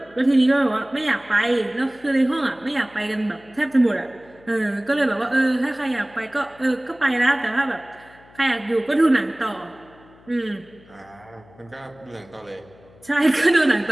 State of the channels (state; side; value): noise; left; hum, 26 dB below the sound